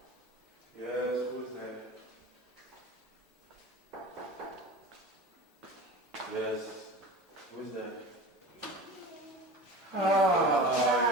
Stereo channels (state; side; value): normal; both; correlation 0.34